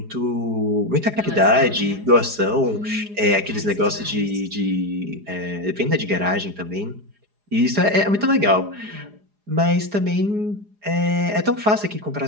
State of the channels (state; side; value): late; left; 4.8 ms